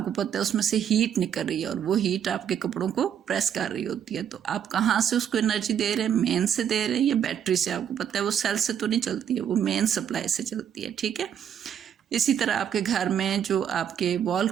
पता है उसमें से हीट निकल रही है और वो हीट आपके कपड़ों को प्रेस कर रही होती है। तो आप कहाँ से उसको एनर्जी दे रहे हैं, मेन से दे रहे हैं या बैटरी से, आपको पता है वो सेल से तो नहीं चलती है, वो मेन सप्लाई से चलती है, ठीक है। इसी तरह आपके घर में जो आपके वॉल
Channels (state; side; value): quieter; left; 8.9 dB